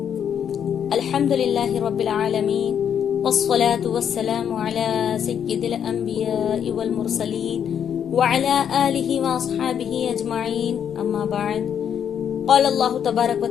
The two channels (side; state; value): right; quieter; 8.5 dB